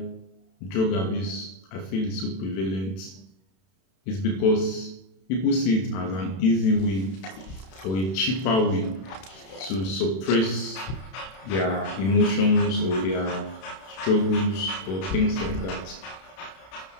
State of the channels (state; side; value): late; right; 32 ms